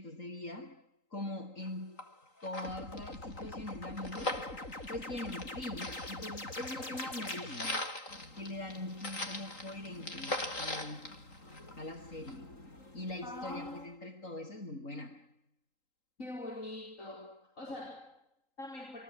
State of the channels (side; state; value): right; late; 3.8 ms